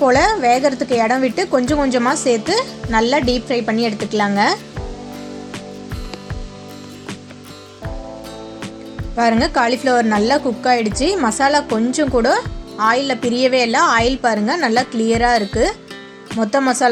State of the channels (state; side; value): identical; both; correlation 1.00